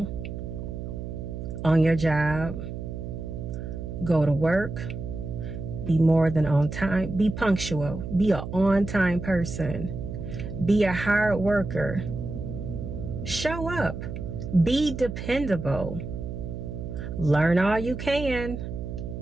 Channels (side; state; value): right; noise; hum, 7 dB below the sound